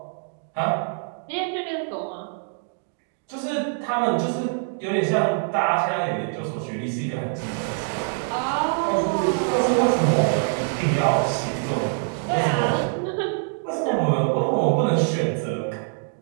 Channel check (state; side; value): silent; left; 62 dB below the other